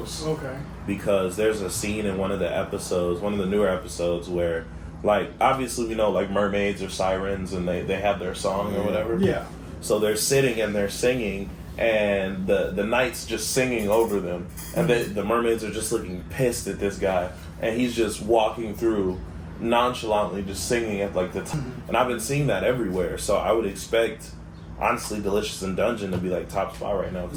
Okay. Because there's a scene in one of the episodes, one of the newer episodes, where, like, obviously we know, like, mermaids or sirens and they have their song or whatever. Yeah. So they're sitting and they're singing, and the knight's just singing over them. And the mermaids are just looking pissed at this guy. And he's just walking through nonchalantly, just singing at, like, the And I've been seeing that everywhere. So I would expect, honestly, Delicious in Dungeon to be, like, top spot right now.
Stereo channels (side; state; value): both; identical; correlation 1.00